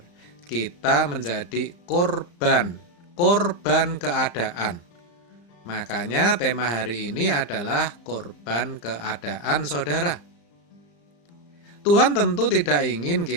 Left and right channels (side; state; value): right; late; 35 ms